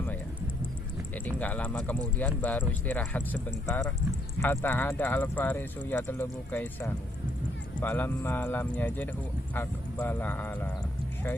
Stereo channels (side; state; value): both; normal; correlation 0.72